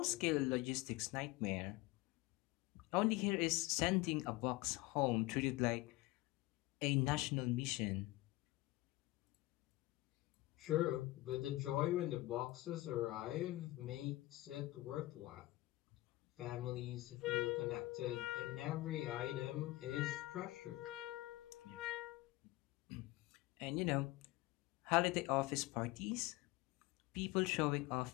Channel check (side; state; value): right; quieter; 19.3 dB